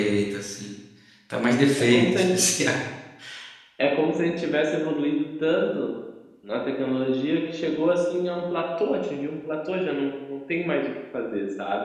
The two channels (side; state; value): both; identical; correlation 1.00